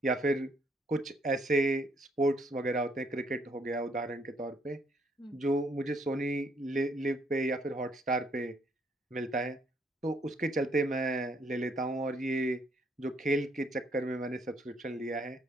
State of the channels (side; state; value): both; normal; correlation 0.69